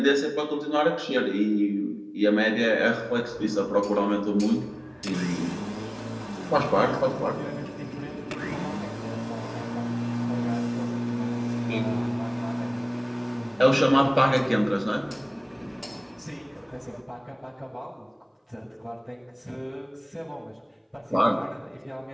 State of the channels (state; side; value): identical; both; correlation 1.00